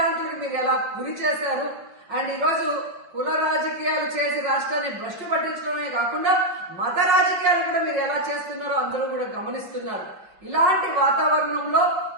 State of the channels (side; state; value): left; late; 5.6 ms